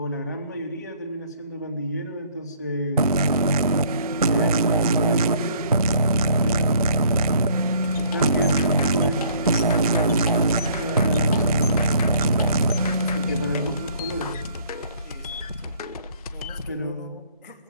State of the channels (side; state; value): both; inverted; correlation -0.59